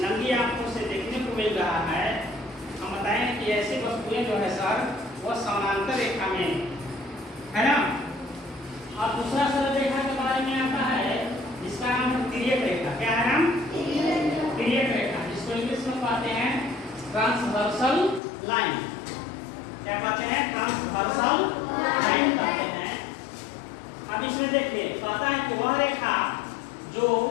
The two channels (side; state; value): right; drops out; at 18.2 s